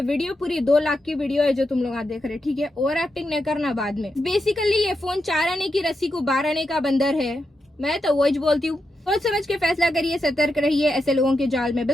वीडियो पूरी 2 लाख की वीडियो है जो तुम लोग देख रहे, ठीक है। ओवर एक्टिंग नहीं करना बाद में। बेसिकली ये फोन 4 आने की रस्सी को 12 आने का बंदर है, मैं तो वही बोलती हूँ। सोच समझ के फैसला करिए, सतर्क रहिए, ऐसे लोगों के जाल में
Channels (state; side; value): normal; both; correlation 0.86